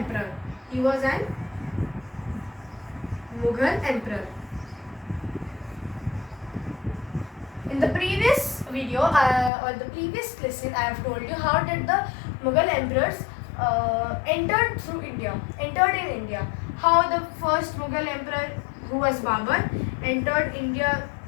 He was an Mughal emperor. In the previous video or the previous lesson, I have told you how did the Mughal emperors entered in India. How the first Mughal emperor, who was Babur, entered India.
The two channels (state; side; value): drops out; right; at 9.5 s